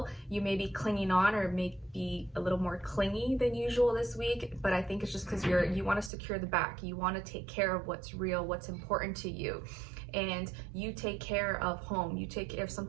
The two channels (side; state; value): left; drops out; at 6.1 s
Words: You may be clinging on, or may be a little more clingy than usual this week, but I think it's just because you want to secure the back. You want to take care of what's real, what's important to you. And you take care of home. You take care, if